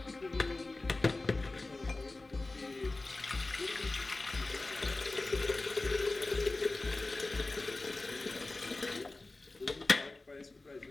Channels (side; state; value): right; quieter; 3.1 dB